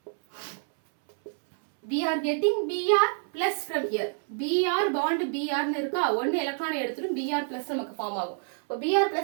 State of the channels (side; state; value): left; silent; 60 dB below the other